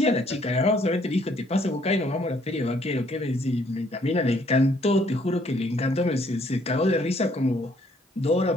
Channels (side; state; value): both; normal; correlation 0.65